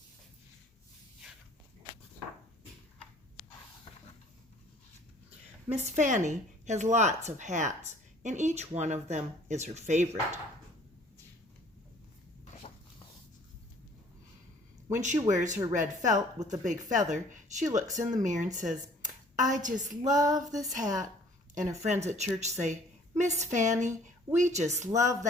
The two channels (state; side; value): normal; both; correlation 0.55